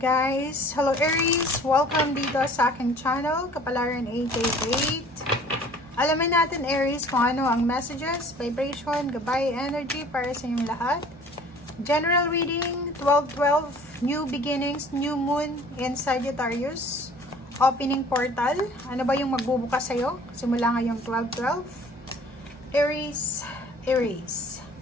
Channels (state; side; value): normal; both; correlation 0.50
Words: Hello Aries! Welcome dito sa aking channel, Kapalaran 888. Alamin natin Aries kung ano ang messages, vibration, gabay, energy para sa inyong lahat. General reading, 12-12, new beginnings, new moon in Sagittarius. Opening portal, ano ba yung magbubukas sa'yo? Simula ngayong 12-12. Aries, Aries.